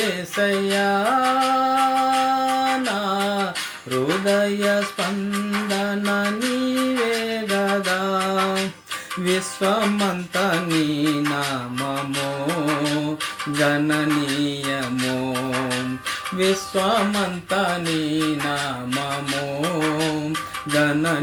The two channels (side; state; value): both; identical; correlation 1.00